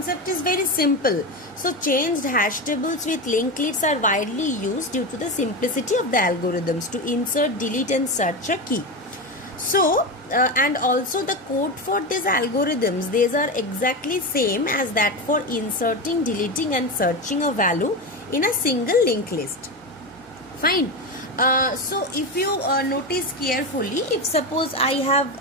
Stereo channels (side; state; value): both; normal; correlation 0.18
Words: is very simple. So changed hash tables with linked lists are widely used due to the simplicity of the algorithms to insert, delete and search a key. So and also the code for these algorithms, these are exactly same as that for inserting, deleting and searching a value in a single linked list. Fine. So if you notice carefully, if suppose I